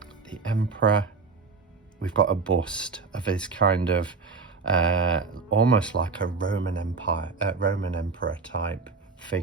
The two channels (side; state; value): left; quieter; 4.6 dB